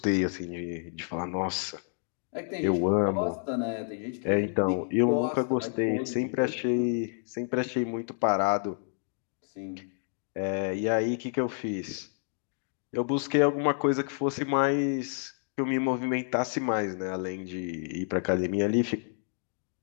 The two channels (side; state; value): right; silent; 58 dB below the other